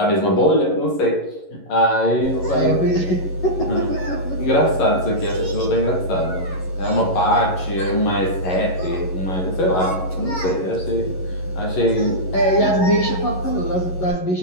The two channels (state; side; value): late; right; 11 ms